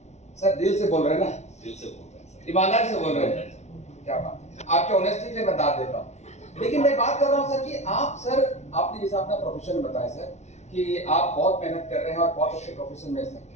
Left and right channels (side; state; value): right; late; 0.32 ms